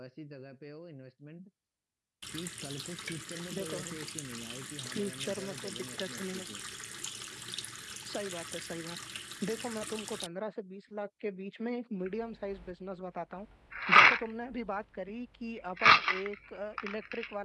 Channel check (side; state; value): both; identical; correlation 1.00